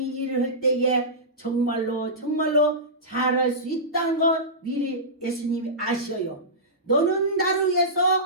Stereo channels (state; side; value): normal; both; correlation -0.17